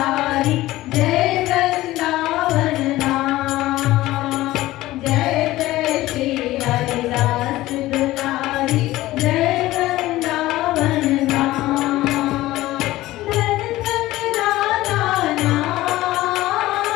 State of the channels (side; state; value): right; quieter; 16.9 dB